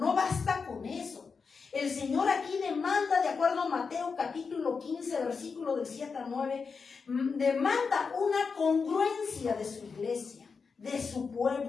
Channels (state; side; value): quieter; right; 5.2 dB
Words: basta con eso. El Señor aquí demanda, de acuerdo a Mateo capítulo 15, versículo del 7 al 9, demanda una congruencia de su iglesia, de su